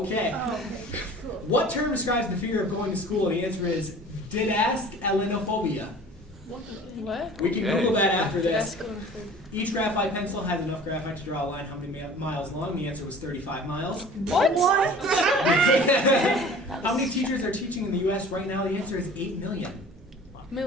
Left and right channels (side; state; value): both; normal; correlation 0.44